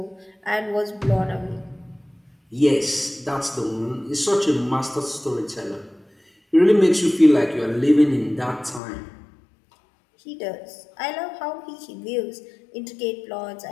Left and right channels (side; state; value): right; drops out; at 8.8 s